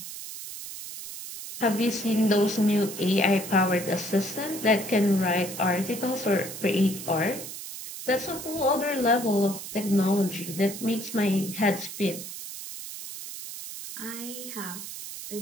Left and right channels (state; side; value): noise; right; hiss, 10 dB below the sound